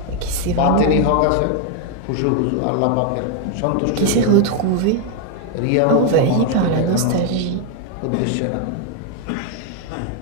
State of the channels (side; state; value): both; different; correlation 0.00